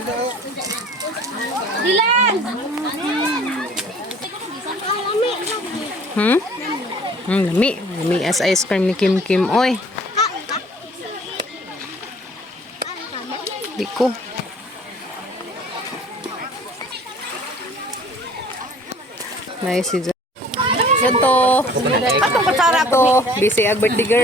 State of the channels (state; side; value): normal; both; correlation 0.52